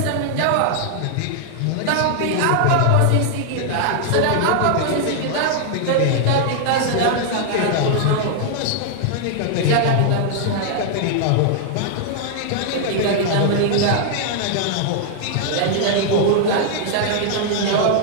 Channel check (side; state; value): both; different; correlation 0.00